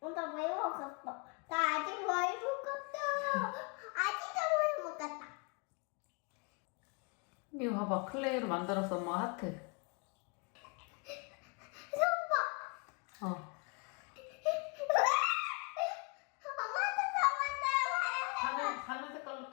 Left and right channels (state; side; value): quieter; right; 33.3 dB